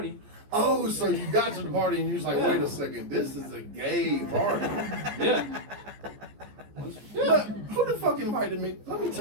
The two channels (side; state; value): left; late; 14 ms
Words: Oh, so you got to the party and you was like, wait a second, this is a gay party. Yeah. But who the fuck invited me? Let me